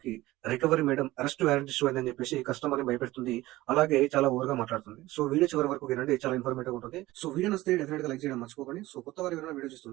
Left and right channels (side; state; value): left; quieter; 17.8 dB